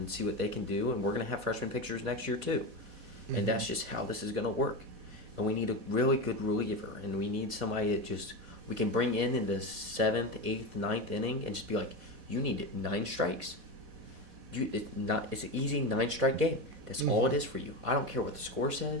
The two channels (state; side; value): late; left; 4.1 ms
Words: see what they can do, and we're going to have freshman pitchers next year too. Mm-hmm. And that's just how this is going to work. And we need a really good reliever, and we need somebody that we can bring in the 7th, 8th, 9th inning and just be like, you need 9 strikes. It's an easy 9-strike game. That's all it is for you. I don't care what the score